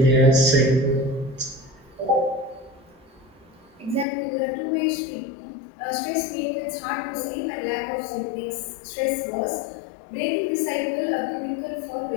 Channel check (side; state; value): right; drops out; at 4.0 s